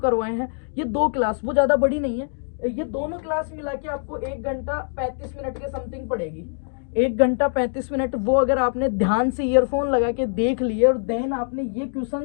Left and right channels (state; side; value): silent; right; digital silence